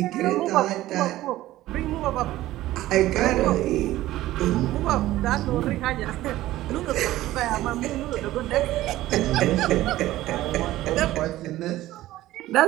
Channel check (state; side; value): quieter; left; 15.6 dB